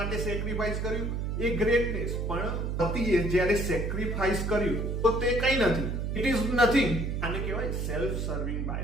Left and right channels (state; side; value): noise; right; hum, 1 dB below the sound